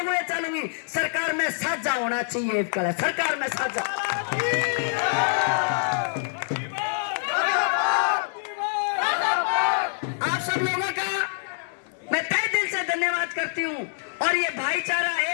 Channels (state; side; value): silent; right; digital silence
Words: घोड़े चलूंगी। सरकार में साझा होना चाहिए, सरकार में साझा। आप सब लोगों का मैं तहे दिल से धन्यवाद करती हूँ और ये भाईचारा,